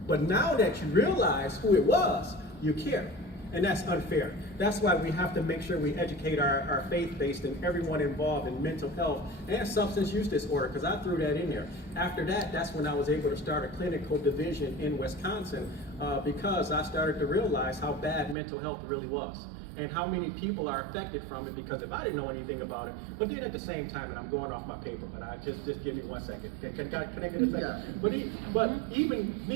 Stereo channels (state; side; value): drops out; left; at 18.4 s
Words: But now that you realize who it was, you care. And that's unfair. That's why we have to make sure we educate our faith-based and everyone involved in mental health and substance use disorder, because I threw that in there. After that, that's when I was able to start a clinical division in Wisconsin, because I started to realize how bad mental health really was, and how many people are affected from it, because if I didn't know anything about it, but then at the same time, and I'm going off my paper, but I just give me 1 second. Can I get a second? Yeah. But even